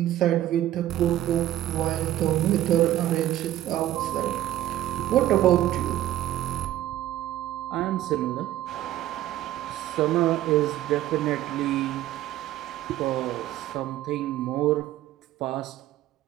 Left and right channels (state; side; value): quieter; left; 13.4 dB